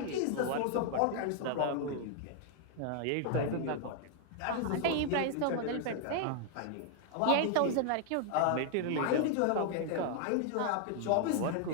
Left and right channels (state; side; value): different; both; correlation 0.00